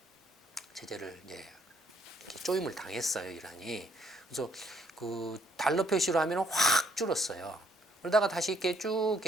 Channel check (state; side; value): normal; both; correlation 0.68